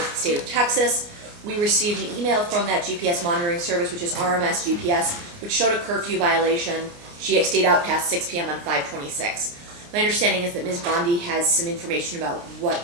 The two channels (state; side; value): late; left; 29 ms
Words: the state of Texas. We received an email from that GPS monitoring service, which is RMS GPS, which showed a curfew violation. She stayed out past 6 p.m. on 5/26. My understanding is that Ms. Bondy has some information about what